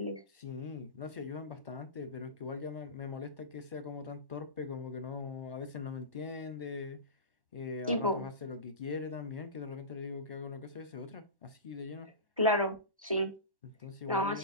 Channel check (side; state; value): left; late; 1.1 ms